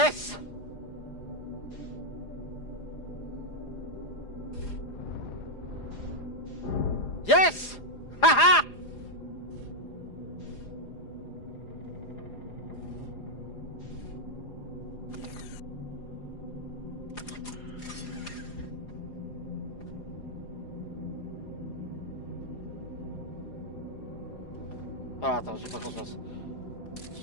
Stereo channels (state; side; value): late; right; 4.9 ms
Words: Yes! Haha! Ah, attends, j'ai pas confiance.